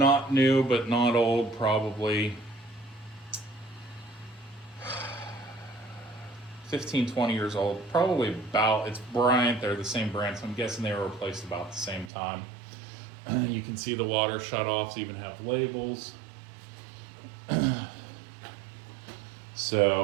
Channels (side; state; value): left; drops out; at 12.1 s